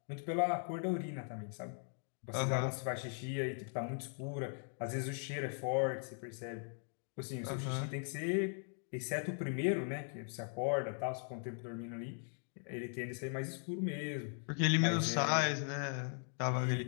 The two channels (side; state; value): right; silent; 52 dB below the other